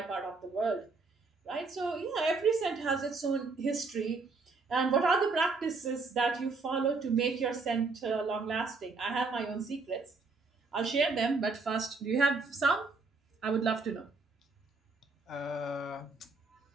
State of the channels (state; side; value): quieter; left; 4.0 dB